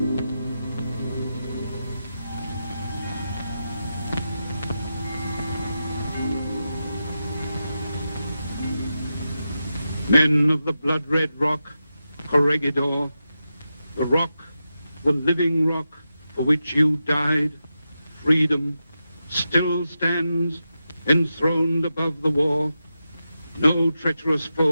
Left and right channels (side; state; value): both; inverted; correlation -0.90